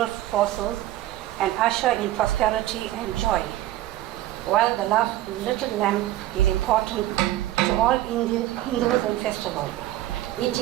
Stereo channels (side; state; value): left; quieter; 14.7 dB